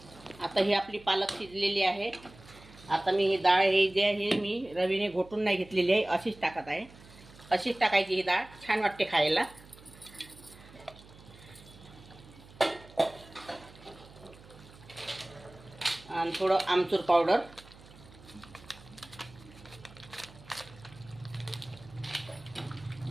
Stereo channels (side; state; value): right; noise; hum, 21 dB below the sound